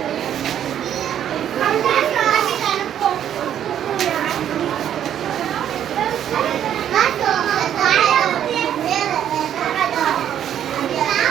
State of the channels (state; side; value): quieter; left; 10.1 dB